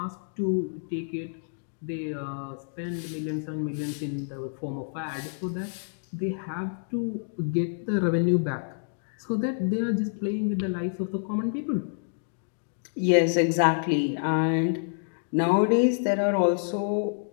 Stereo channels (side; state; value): right; silent; digital silence